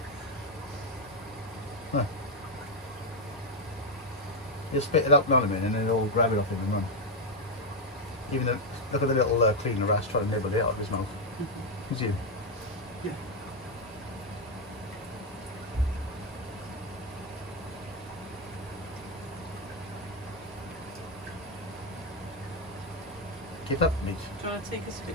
Huh. He'll spit it up now in a minute and then he'll grab it off him and run. Even though, look at the little cleaner rat trying to nibble it out of his mouth. You see him? Yeah. Keep up, mate. Do you want to take us a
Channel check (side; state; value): both; normal; correlation 0.04